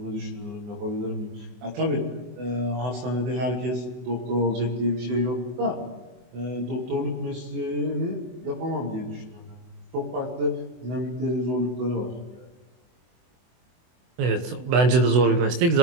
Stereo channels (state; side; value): late; left; 24 ms